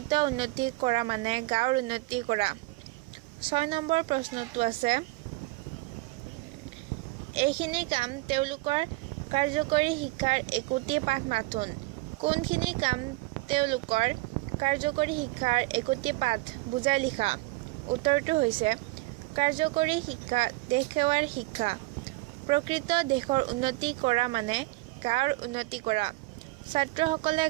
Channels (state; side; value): quieter; left; 22.6 dB